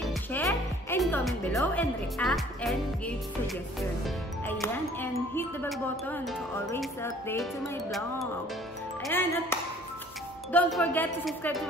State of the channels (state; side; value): normal; both; correlation 0.54